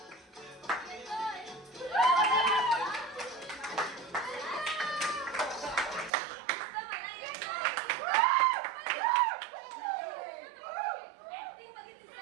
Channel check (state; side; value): drops out; left; at 6.1 s